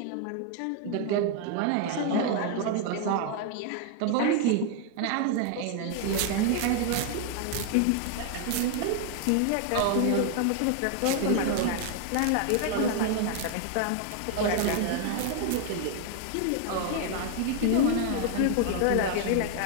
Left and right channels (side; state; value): both; different; correlation 0.00